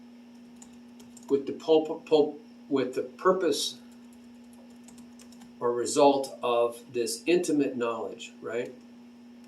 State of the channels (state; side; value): identical; both; correlation 1.00